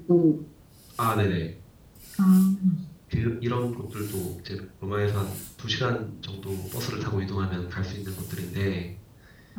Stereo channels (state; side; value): identical; both; correlation 1.00